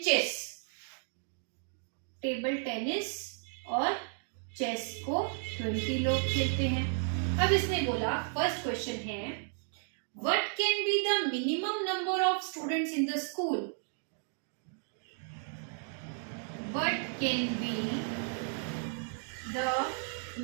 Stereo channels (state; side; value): silent; left; 55 dB below the other